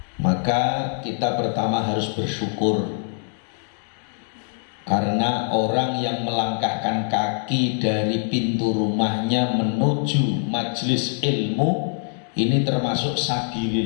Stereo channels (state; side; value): silent; right; 59 dB below the other